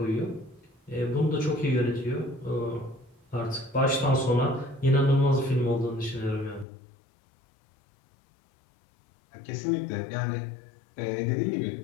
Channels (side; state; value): right; drops out; at 6.7 s